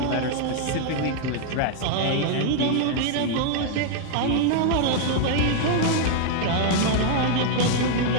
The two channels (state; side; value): different; both; correlation 0.00